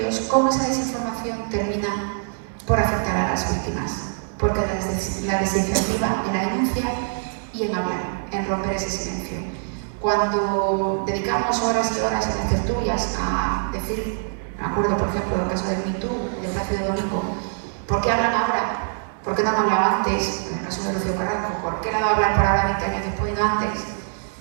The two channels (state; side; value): silent; left; 58 dB below the other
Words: cómo esa desinformación termina por afectar a las víctimas. Porque la desincentiva en la denuncia y en hablar, en romper ese silencio. Cuando dedicamos horas y horas en las tertulias a decir, me acuerdo por ejemplo del caso del Me Too, del Plácido Domingo, ¿por qué hablan ahora? ¿Por qué no han hablado antes? En el caso de Rocío Carrasco, ¿por qué le ha dado a hablar por ahora 20 años después y no antes?